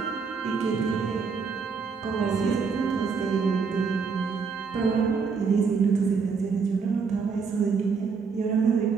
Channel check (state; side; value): quieter; left; 5.4 dB